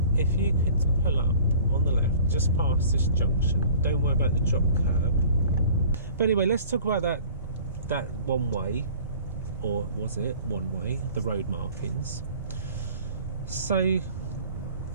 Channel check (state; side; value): inverted; both; correlation -0.48